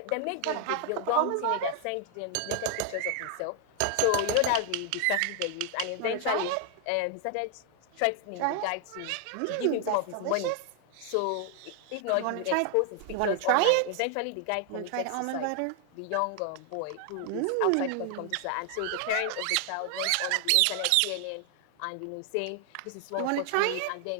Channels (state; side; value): different; both; correlation 0.00